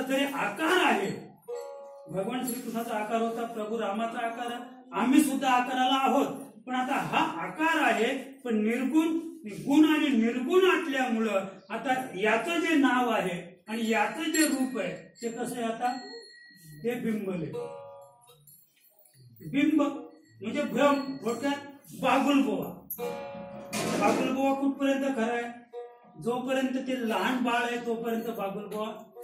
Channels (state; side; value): identical; both; correlation 1.00